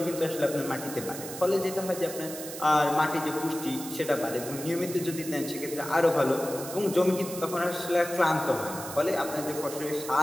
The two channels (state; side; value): noise; right; hiss, 10 dB below the sound